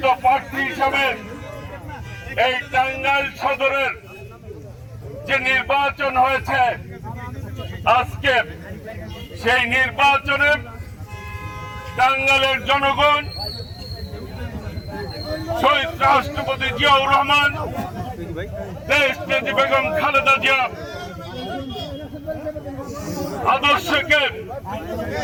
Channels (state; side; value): identical; both; correlation 1.00